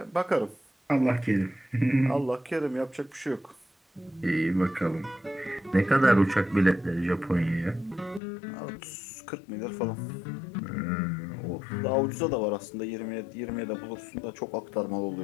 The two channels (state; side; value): drops out; right; at 8.2 s